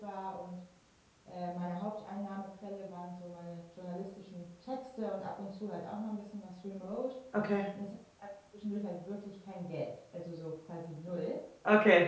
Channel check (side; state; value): both; identical; correlation 1.00